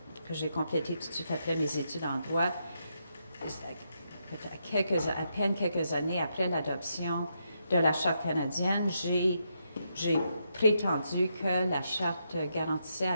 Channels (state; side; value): inverted; both; correlation -0.80